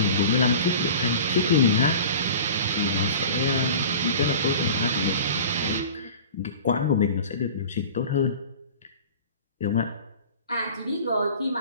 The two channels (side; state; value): both; inverted; correlation -0.39